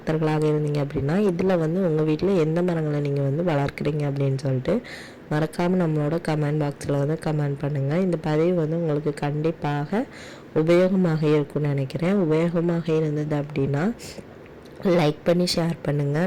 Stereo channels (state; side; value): identical; both; correlation 1.00